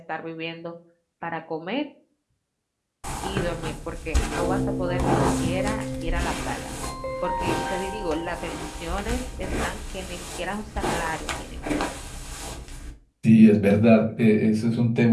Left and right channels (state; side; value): identical; both; correlation 1.00